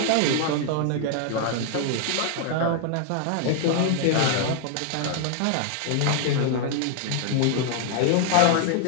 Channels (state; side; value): different; both; correlation 0.00